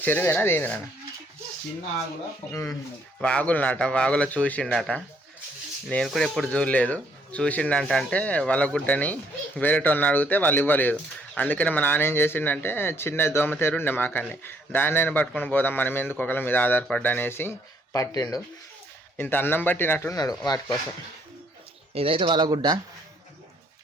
అదేంది నాన్న, చిన్న వాగులో చూసిండట. నేను కూడా ఎప్పుడు చూడలేదు. చూసిండంట అంటే వాళ్ళ గుడ్డని వేరేటోళ్ళని అడిగితే వాళ్ళు ఇవ్వలేదు. అందుకని మా నాన్న ఏం చేసిండంటే చిన్న దోమతేరు ఉండే మాకన్నీ, దాన్ని పట్టుకొని పోదాం మనం ఎందుకు ఒకళ్ళ మీద ఆధారపడ్డా అనేసి పట్టిండు. ఇంత అన్నం పట్టినట్టున్నాడు వాటి కోసం. ఇదైతే వాళ్ళ గుడ్డ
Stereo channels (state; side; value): normal; both; correlation 0.67